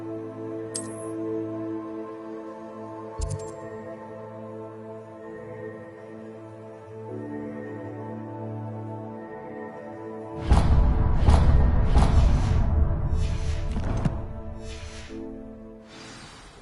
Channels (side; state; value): both; identical; correlation 1.00